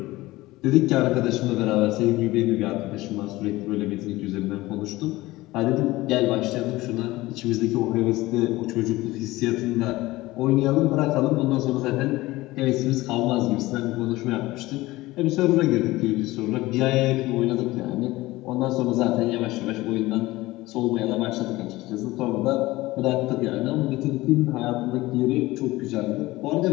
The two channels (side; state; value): right; quieter; 18.9 dB